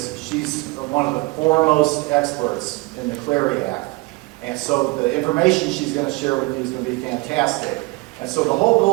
she's one of the foremost experts in the Clary Act. And so the information she's going to share with you is going to be fantastic. And so the whole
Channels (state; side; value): quieter; left; 24.4 dB